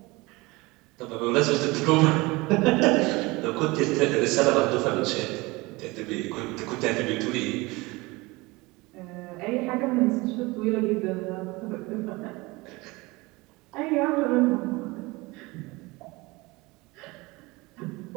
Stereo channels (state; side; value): quieter; left; 23.2 dB